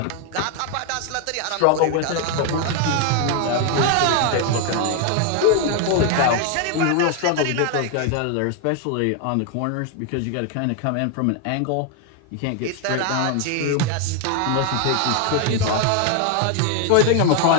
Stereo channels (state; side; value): different; both; correlation 0.01